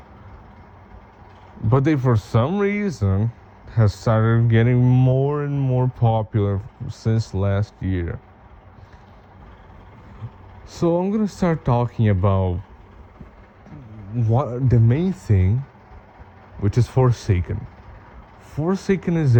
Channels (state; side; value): identical; both; correlation 1.00